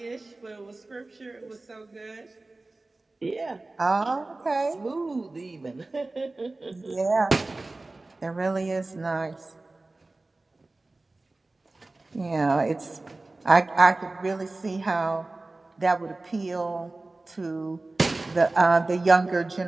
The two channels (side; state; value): left; quieter; 3.1 dB